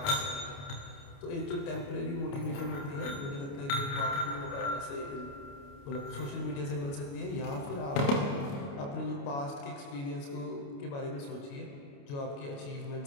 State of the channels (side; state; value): right; late; 29 ms